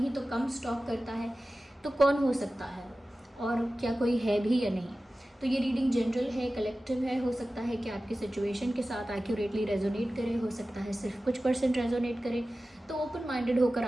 तो कम स्टॉक करता है? तो कौन हो सकता है, और क्या कोई है भी या नहीं? तो ये रीडिंग जनरल है, कलेक्टिव है। हो सकता है कि आपकी सिचुएशन के साथ एक्यूरेटली रेजोनेट करे, हो सकता है सिर्फ कुछ % रेजोनेट करे। तो ओपन माइंडेड होकर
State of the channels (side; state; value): both; normal; correlation 0.95